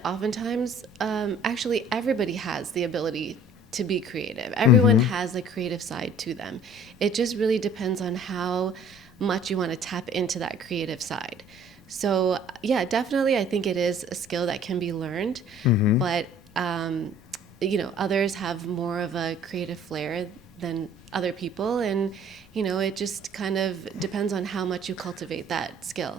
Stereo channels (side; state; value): both; normal; correlation 0.53